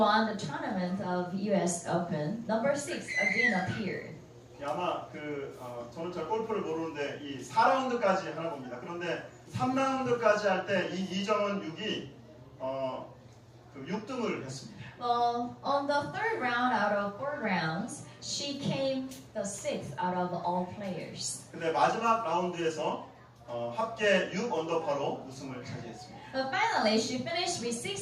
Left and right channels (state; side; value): identical; both; correlation 1.00